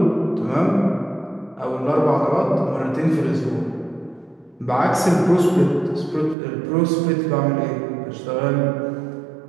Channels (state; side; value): drops out; left; at 6.4 s